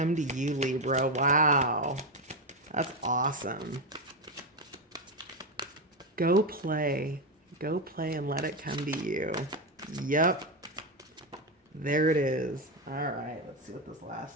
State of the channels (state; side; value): normal; both; correlation 0.11